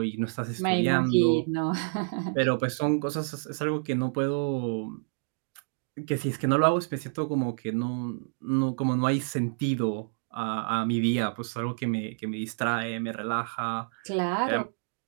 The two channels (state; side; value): silent; left; digital silence